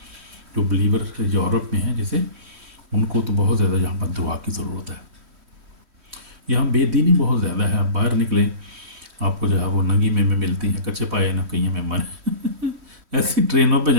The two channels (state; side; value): late; left; 3.1 ms